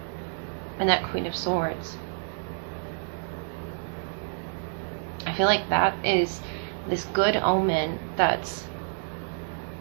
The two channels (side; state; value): left; silent; digital silence